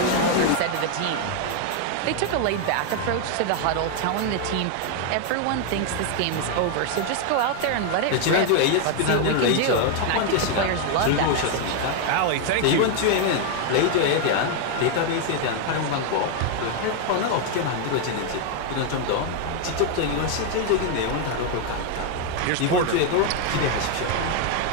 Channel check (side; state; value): both; different; correlation 0.00